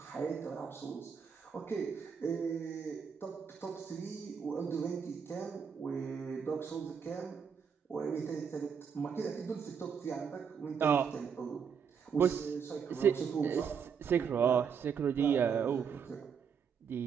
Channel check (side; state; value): left; quieter; 6.9 dB